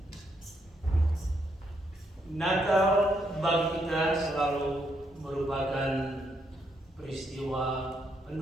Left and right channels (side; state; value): both; normal; correlation 0.76